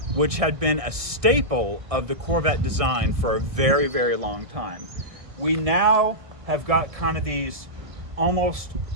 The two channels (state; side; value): late; left; 1.6 ms